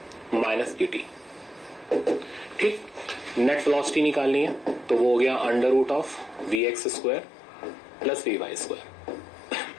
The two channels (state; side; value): drops out; right; at 6.6 s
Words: minus dt। ठीक, नेट वेलोसिटी निकालनी है तो वो हो गया under root of Vx square plus Vy square.